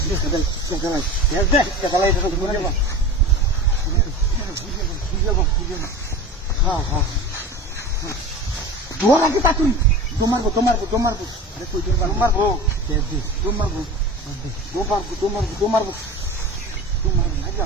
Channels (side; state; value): both; normal; correlation 0.34